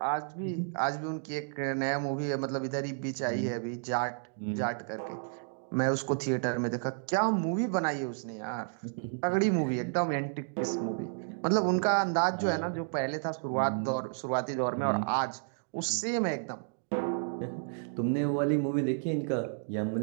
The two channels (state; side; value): silent; left; digital silence